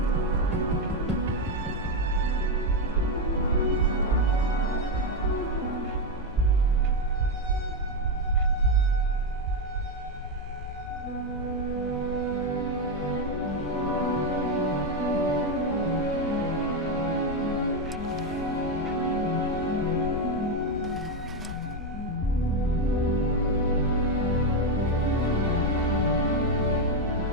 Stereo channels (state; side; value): normal; both; correlation 0.07